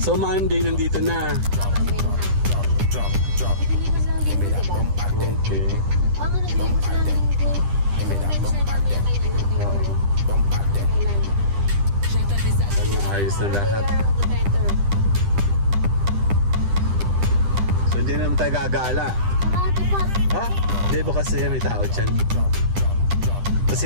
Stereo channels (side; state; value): left; late; 10 ms